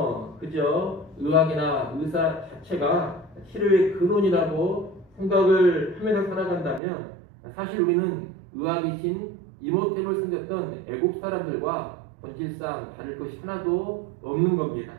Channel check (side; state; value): left; drops out; at 6.8 s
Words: 그저 의학이나 의사 자체가 치료의 근원이라고 생각을 하면서 살아간다면 사실 우리는 의학이신 이모텝을 섬겼던 애국 사람들과 본질상 다를 것이 하나도 없는 겁니다.